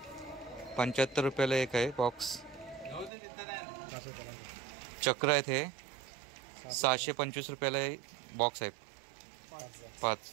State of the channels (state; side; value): drops out; left; at 3.1 s